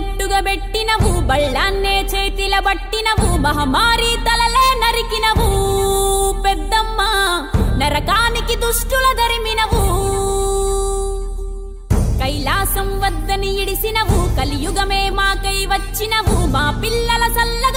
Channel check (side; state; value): both; identical; correlation 1.00